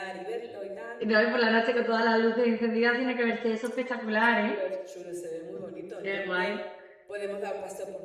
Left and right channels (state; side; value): identical; both; correlation 1.00